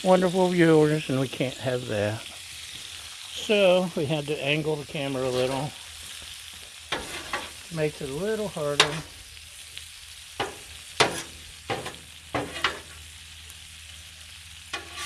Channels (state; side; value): identical; both; correlation 1.00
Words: wonderful viewers, and we can't have that. So we had to angle the camera a little. Makes it a little harder.